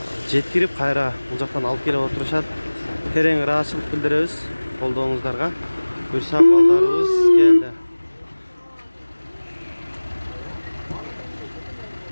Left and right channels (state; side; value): inverted; both; correlation -1.00